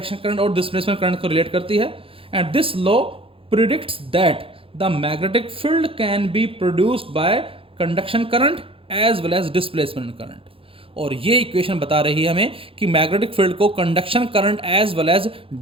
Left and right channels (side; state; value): left; late; 0.27 ms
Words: current और डिस्प्लेसमेंट करंट को रिलेट करती है, and this law predicts that the magnetic field can be produced by conduction current as well as displacement current। और ये equation बता रही है हमें कि मैग्नेटिक फील्ड को conduction current as well as